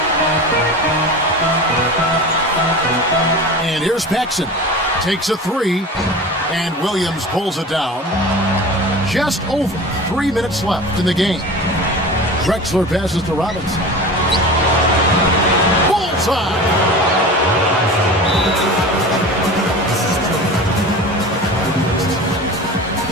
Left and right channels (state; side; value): normal; both; correlation 0.34